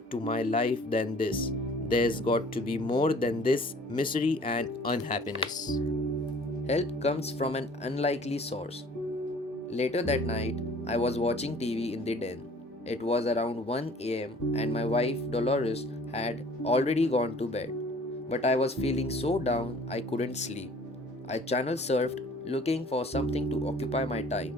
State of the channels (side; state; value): both; normal; correlation 0.52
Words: to my life than this. There's got to be more than this misery and unhappiness." Help comes from an unlikely source. Later that night, I was watching TV in the den. It was around 1 am, and my wife Dolores had already gone to bed. But I was feeling so down I couldn't sleep. I channel surfed looking for something to occupy my time.